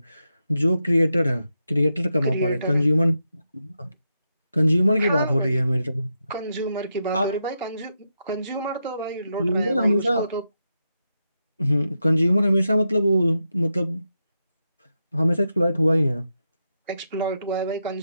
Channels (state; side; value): inverted; both; correlation -0.85